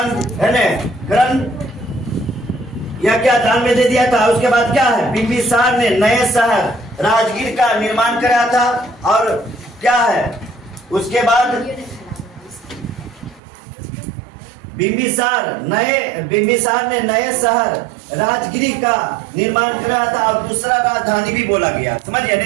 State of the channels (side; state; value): left; drops out; at 13.4 s